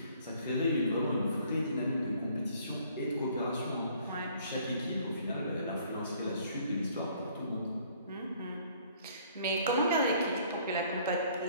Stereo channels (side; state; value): both; inverted; correlation -0.59